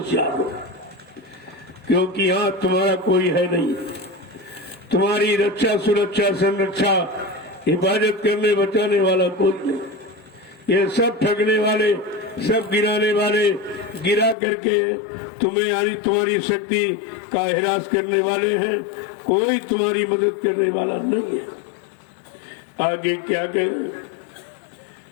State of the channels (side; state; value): right; drops out; at 14.4 s